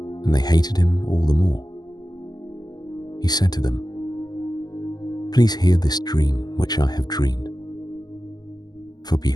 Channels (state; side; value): late; right; 0.20 ms